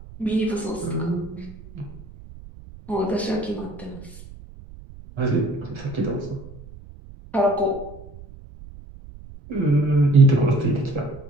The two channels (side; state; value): right; noise; rumble, 18 dB below the sound